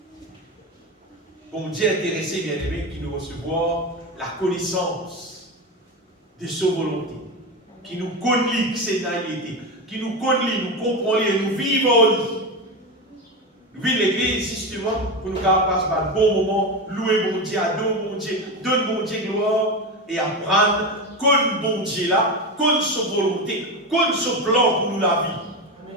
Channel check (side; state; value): both; normal; correlation 0.18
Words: Bon Dieu intéressé, bien aimé, qui nous recevoir la connaissance de sa volonté, qui nous connaît que c'est naïveté, qui nous connaît, nous comprend et nous vivons. Nous vivons l'église justement pour nous passer par un bon moment, louer bon Dieu, adorer bon Dieu, donner bon Dieu gloire et apprendre comme bon Dieu là, comme sa volonté, comme son plan pour nous la